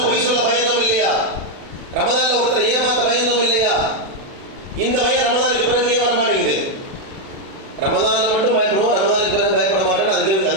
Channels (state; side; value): late; left; 36 ms